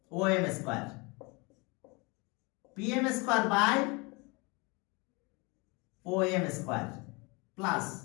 M square, P M square by O M square plus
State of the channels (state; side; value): quieter; right; 27.9 dB